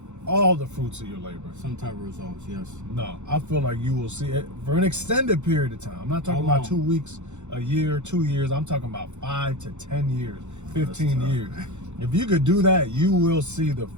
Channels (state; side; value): late; left; 0.83 ms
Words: all the fruits of your labor. Some type of results, yes. No, I feel like you will see it for an extended period of time. I'm not talking How about long? 2 weeks, a year, 2 years. I'm talking about 5 to 10 years, 15 tough, years. man. If you could do that, you will see the